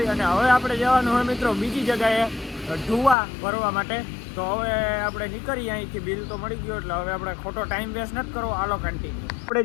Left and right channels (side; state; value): right; drops out; at 3.2 s